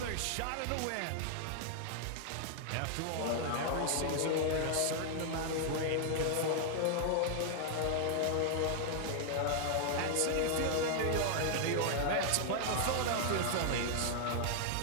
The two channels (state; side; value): different; both; correlation 0.00